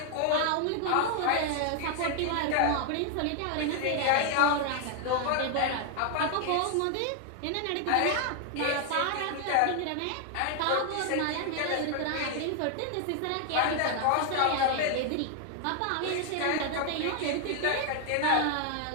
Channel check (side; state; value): both; different; correlation 0.00